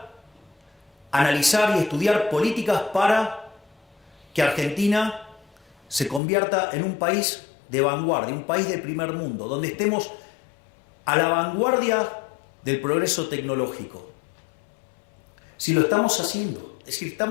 analizar y estudiar políticas para que Argentina se convierta en un país de vanguardia, un país de primer mundo, donde estemos a la vanguardia del progreso tecnológico. Si lo estamos haciendo, es decir,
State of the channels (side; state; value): right; drops out; at 6.2 s